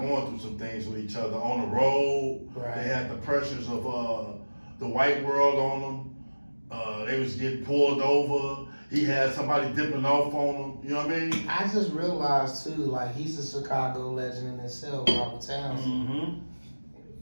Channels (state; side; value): inverted; both; correlation -1.00